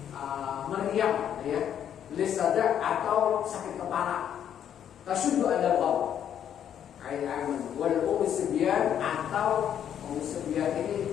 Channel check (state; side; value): quieter; right; 9.5 dB